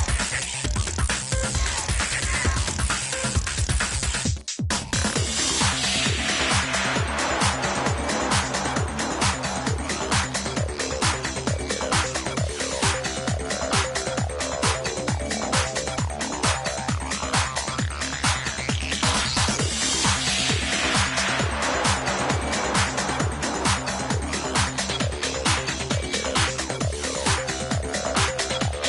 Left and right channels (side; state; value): both; identical; correlation 1.00